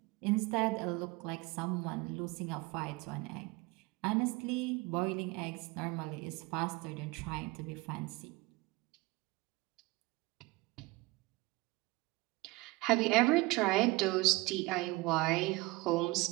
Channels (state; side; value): quieter; left; 22.7 dB